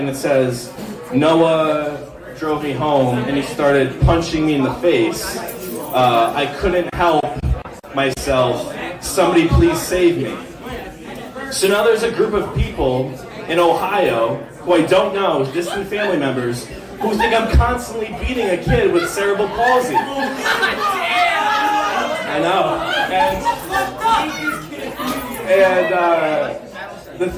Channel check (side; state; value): both; identical; correlation 1.00